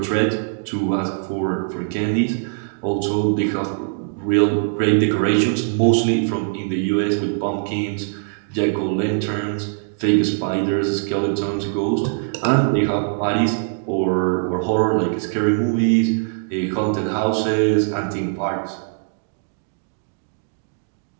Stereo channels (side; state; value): left; silent; digital silence